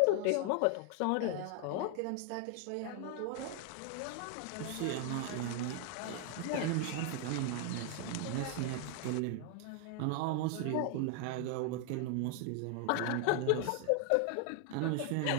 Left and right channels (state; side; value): different; both; correlation 0.00